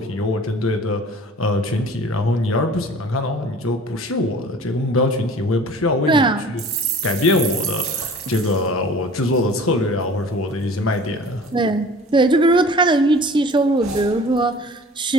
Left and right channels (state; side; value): normal; both; correlation 0.45